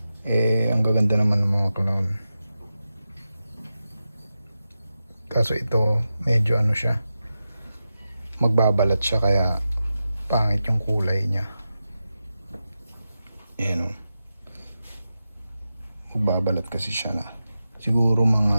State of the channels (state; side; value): inverted; both; correlation -0.91